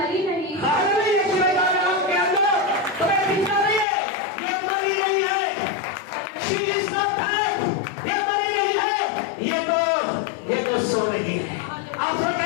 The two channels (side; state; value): right; drops out; at 3.9 s